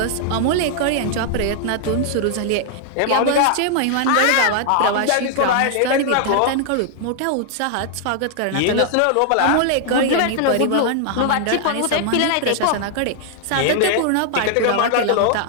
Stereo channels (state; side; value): different; both; correlation -0.01